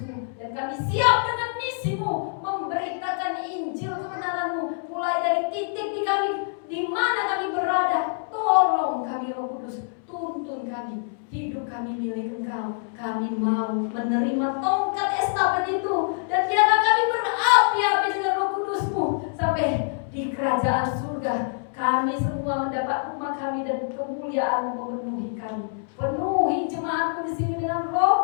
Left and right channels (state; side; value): silent; right; 61 dB below the other